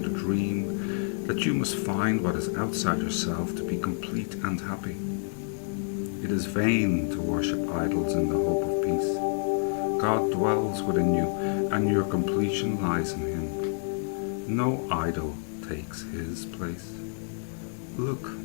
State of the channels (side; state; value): right; silent; digital silence